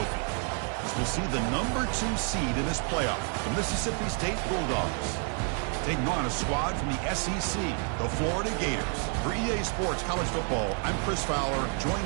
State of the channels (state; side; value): quieter; left; 38.8 dB